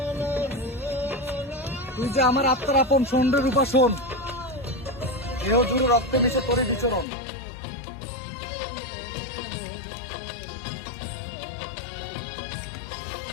তুই যে আমার আত্মার আপন, শোন রে রূপা শোন, দেহ জুড়ে রক্তে মিশে তোরে বিচরণ।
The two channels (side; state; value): right; drops out; at 7.1 s